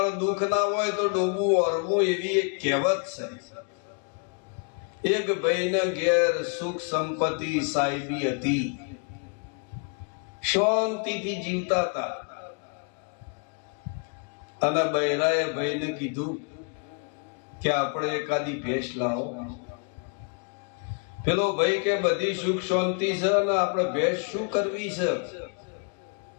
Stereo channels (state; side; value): quieter; right; 38.4 dB